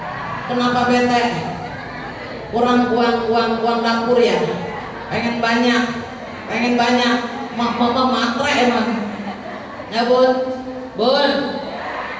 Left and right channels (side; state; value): both; identical; correlation 1.00